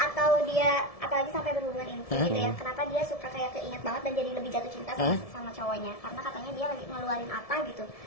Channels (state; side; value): late; right; 1.7 ms